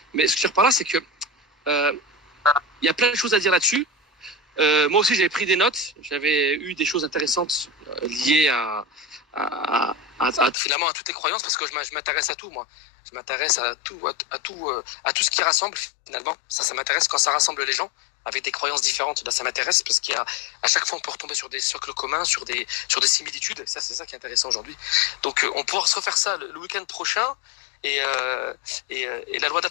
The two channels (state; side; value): drops out; right; at 10.6 s